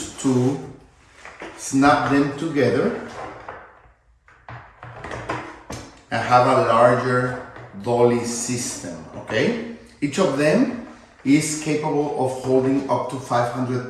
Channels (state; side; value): identical; both; correlation 1.00